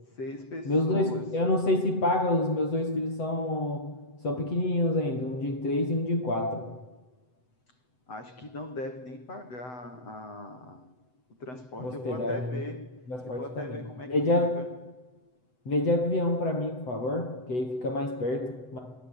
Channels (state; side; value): late; right; 7.9 ms